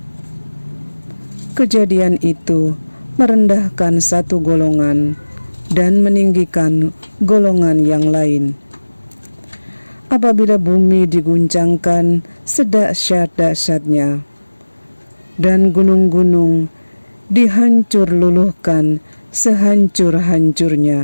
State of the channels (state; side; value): inverted; both; correlation -1.00